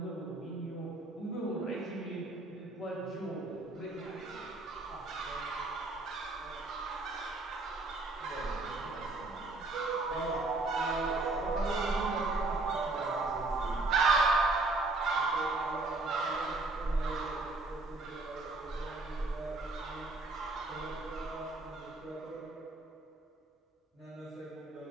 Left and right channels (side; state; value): left; quieter; 3.2 dB